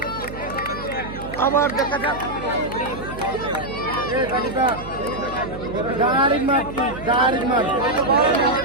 আবার দেখা যাক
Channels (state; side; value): noise; right; hum, 12 dB below the sound